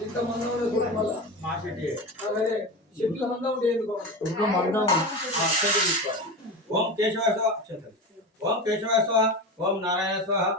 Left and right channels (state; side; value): normal; both; correlation 0.24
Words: ఇంత మందం మా చెట్టు చెట్ల మందం ఉంటే ఓం కేశవాయ స్వాహ, ఓం కేశవాయ స్వాహ, ఓం నారాయణ స్వాహ,